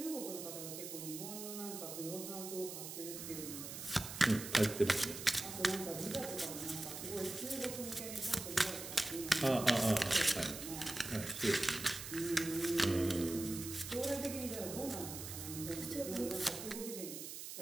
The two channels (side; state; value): right; noise; hiss, 8 dB below the sound